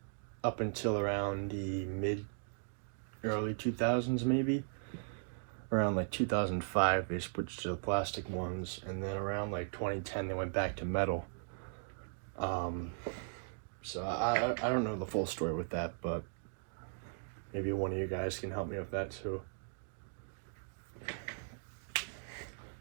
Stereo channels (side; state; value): left; silent; digital silence